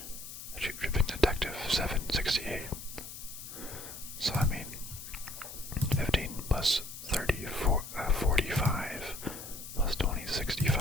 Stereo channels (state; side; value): noise; left; hiss, 11 dB below the sound